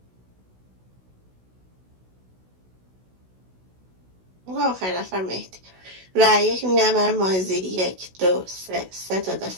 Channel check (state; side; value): late; left; 16 ms